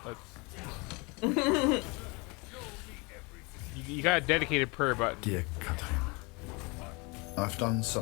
That's you got a dedicated purr button. Dear Catherine, I've done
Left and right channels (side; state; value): right; quieter; 28.1 dB